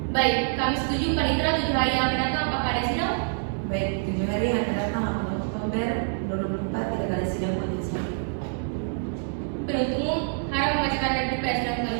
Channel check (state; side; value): silent; left; 61 dB below the other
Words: Baik, kami setuju panitera 7 hari yang akan datang. Apakah ada sidang? Baik, 7 hari yang akan datang 8 Oktober 2024 tidak ada sidang majelis hakim. Penuntut umum harap membacakan replik pada sidang